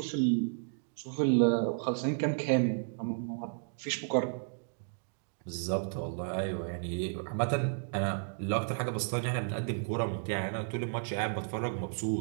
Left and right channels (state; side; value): silent; left; digital silence